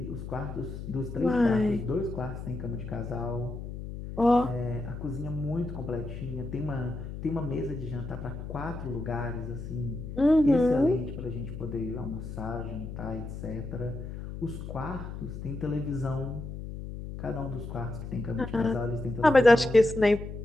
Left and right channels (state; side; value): noise; left; hum, 8 dB below the sound